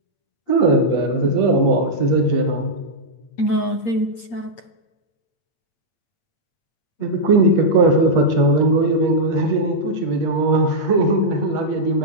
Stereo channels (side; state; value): right; late; 8.6 ms